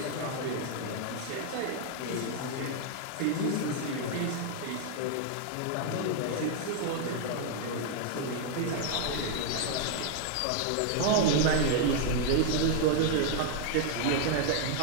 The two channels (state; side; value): different; both; correlation 0.00